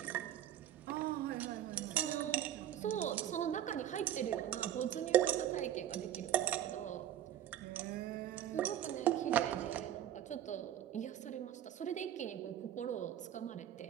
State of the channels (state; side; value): quieter; left; 11.4 dB